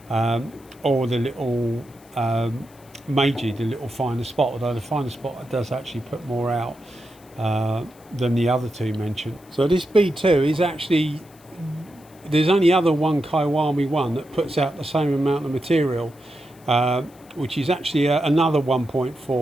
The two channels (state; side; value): noise; left; hiss, 27 dB below the sound